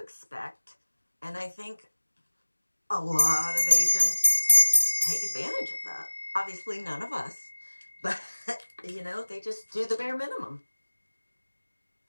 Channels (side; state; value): both; inverted; correlation -1.00